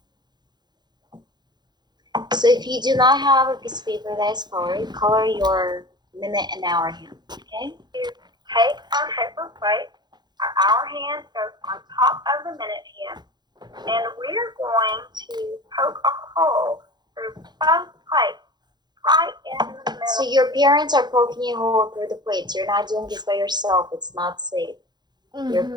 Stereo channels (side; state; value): left; late; 0.21 ms